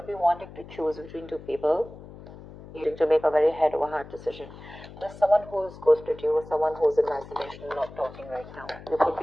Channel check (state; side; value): noise; left; hum, 16 dB below the sound